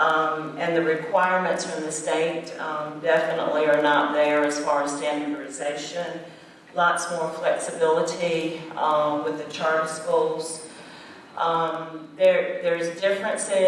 the requirements from the state definitely are not there as far as standardization. lots more flexibility with the charter schools. There's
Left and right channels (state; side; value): identical; both; correlation 1.00